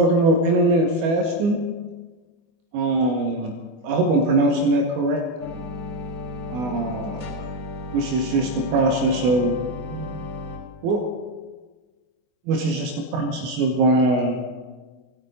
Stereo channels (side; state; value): left; late; 24 ms